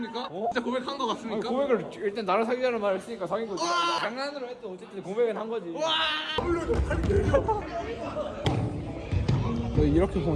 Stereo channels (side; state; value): both; identical; correlation 1.00